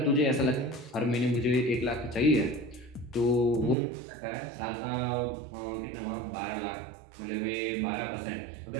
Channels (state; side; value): drops out; left; at 3.8 s